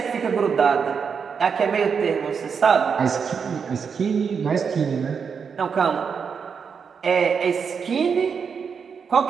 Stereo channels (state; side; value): quieter; left; 6.3 dB